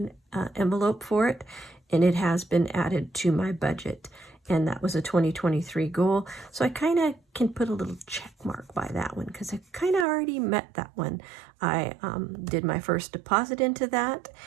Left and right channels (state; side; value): drops out; left; at 10.1 s